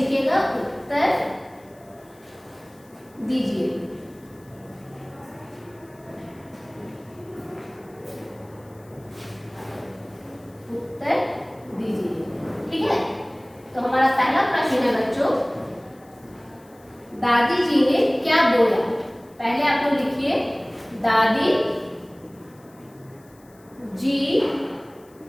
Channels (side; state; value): left; noise; hiss, 29 dB below the sound